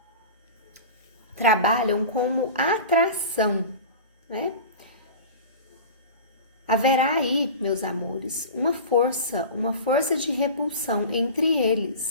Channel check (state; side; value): inverted; both; correlation -0.34